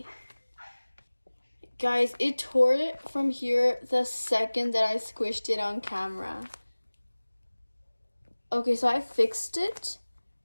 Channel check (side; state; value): both; inverted; correlation -1.00